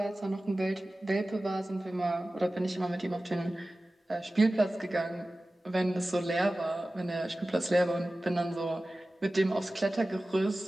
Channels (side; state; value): both; normal; correlation 0.96